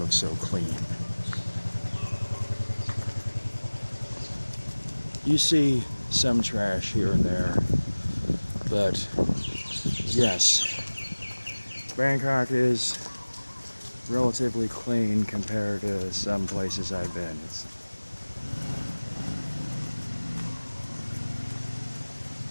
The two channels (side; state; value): both; inverted; correlation -1.00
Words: so clean. You see some trash here and there, but yes, Bangkok is relatively clean compared to some places I've been.